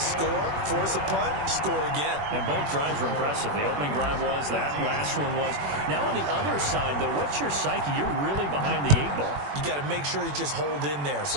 force a punt, score again. And both drives were impressive. The opening drive was, that last one was. Now on the other side, though, what's your psyche? You're really behind the 8 ball. You got to make sure you just hold in there.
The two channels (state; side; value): late; left; 21 ms